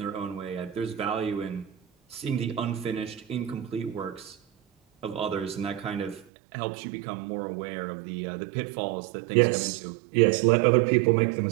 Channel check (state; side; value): drops out; left; at 6.2 s